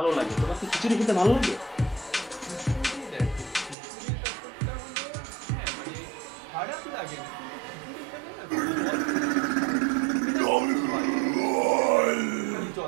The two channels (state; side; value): drops out; left; at 3.8 s